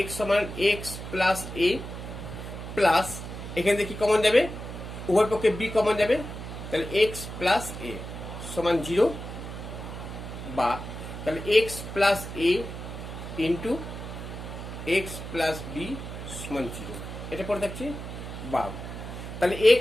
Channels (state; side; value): noise; right; hum, 9 dB below the sound